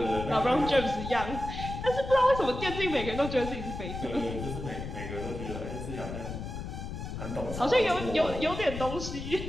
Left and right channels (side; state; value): left; noise; rumble, 7 dB below the sound